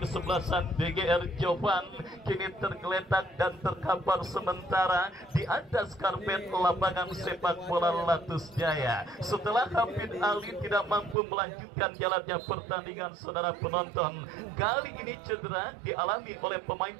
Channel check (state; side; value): drops out; left; at 11.2 s